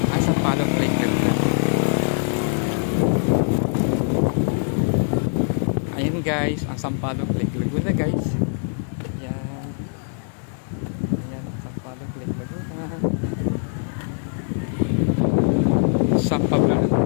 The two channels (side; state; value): right; silent; 62 dB below the other